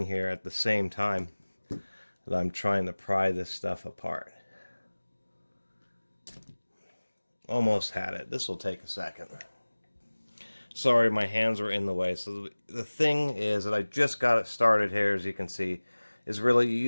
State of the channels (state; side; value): inverted; both; correlation -1.00